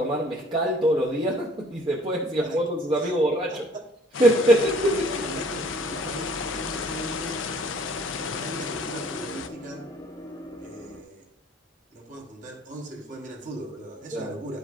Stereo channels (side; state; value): both; normal; correlation 0.56